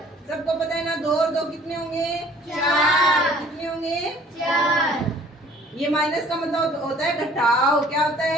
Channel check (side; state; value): both; normal; correlation 0.53